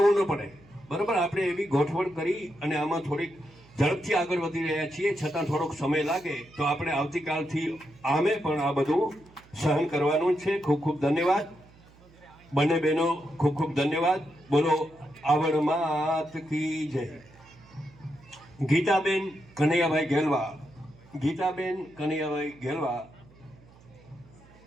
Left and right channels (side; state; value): right; noise; hum, 26 dB below the sound